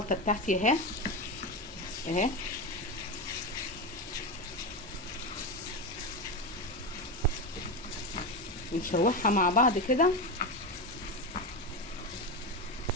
بتاعتي اهي اهي، نشوحها مع بعض كده.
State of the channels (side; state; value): both; normal; correlation 0.17